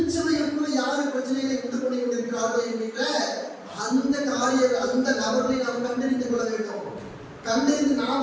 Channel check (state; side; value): identical; both; correlation 1.00